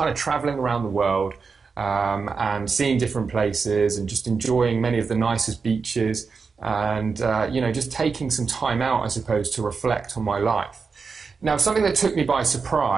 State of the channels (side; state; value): left; quieter; 5.0 dB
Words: of traveling around the world and seeing different places and just enjoying many of the nicest beaches and, you know, just taking some time out, I suppose, to reflect on my life. Now, something that took me by